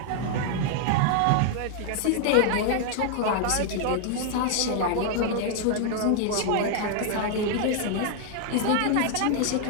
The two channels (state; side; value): different; both; correlation 0.00